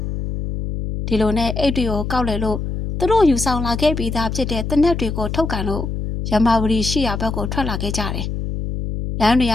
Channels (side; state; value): left; noise; hum, 4 dB below the sound